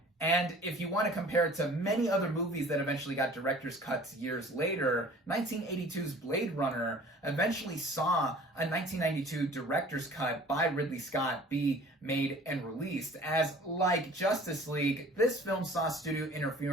And if you want to compare it to many other movies that eventually got director's cuts years later, 1982's Blade Runner eventually saw a 1992 director's cut by Ridley Scott be made and released, as like Justice League, this film saw studio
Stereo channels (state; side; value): normal; both; correlation 0.48